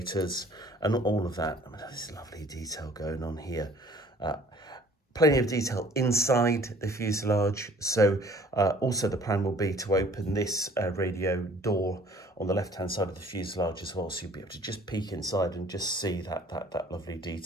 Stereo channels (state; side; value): normal; both; correlation 0.54